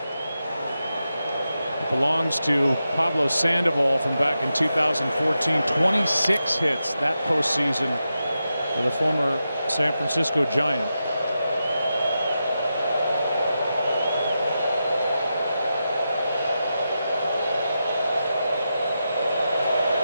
Belongs to Pablo Sandoval from back in 2014. 26 hits that postseason for the former San Francisco Giant.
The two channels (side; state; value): both; inverted; correlation -0.89